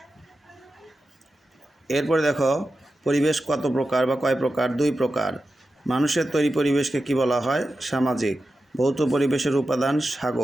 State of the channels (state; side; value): normal; both; correlation 0.92